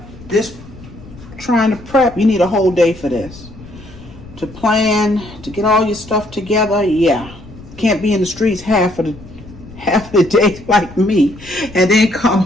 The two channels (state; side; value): noise; left; rumble, 19 dB below the sound